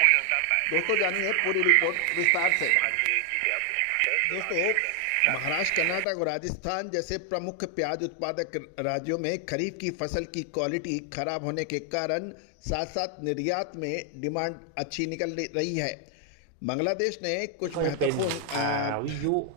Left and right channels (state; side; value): different; both; correlation 0.00